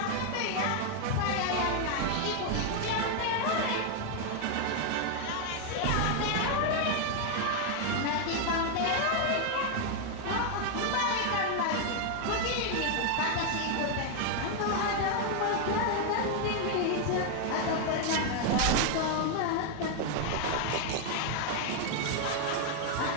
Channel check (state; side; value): different; both; correlation 0.01